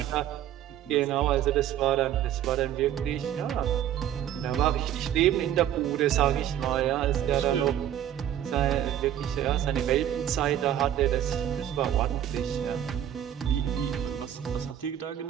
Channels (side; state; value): left; quieter; 10.9 dB